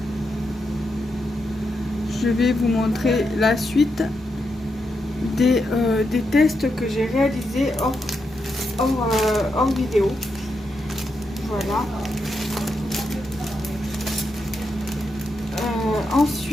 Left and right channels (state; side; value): normal; both; correlation 0.84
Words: je vais vous montrer la suite des tests que j'ai réalisés hors vidéo. Voilà.